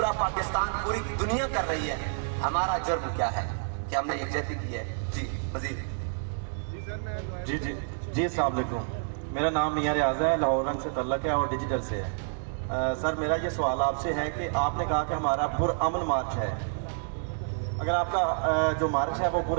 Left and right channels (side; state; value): left; silent; digital silence